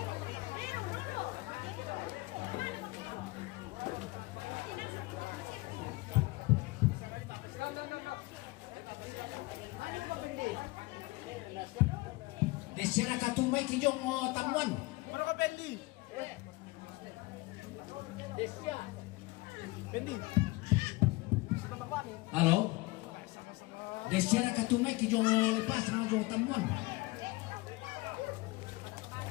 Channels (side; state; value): right; quieter; 22.0 dB